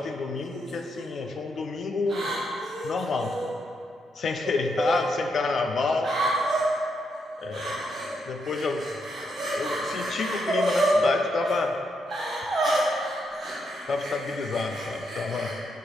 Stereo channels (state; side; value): normal; both; correlation 0.79